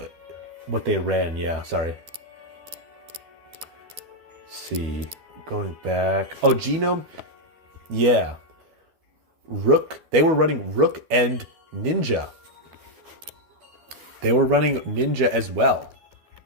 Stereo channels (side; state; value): left; late; 12 ms